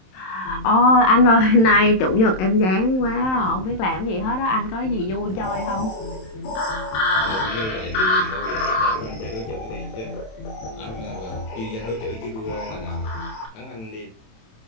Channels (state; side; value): late; right; 27 ms